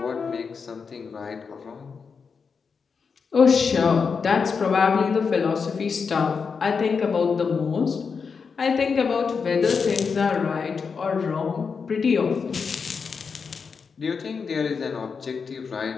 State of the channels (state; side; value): quieter; right; 5.6 dB